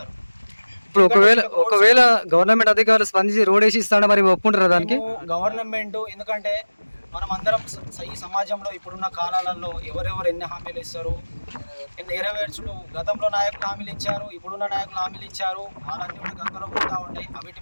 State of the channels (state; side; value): inverted; both; correlation -1.00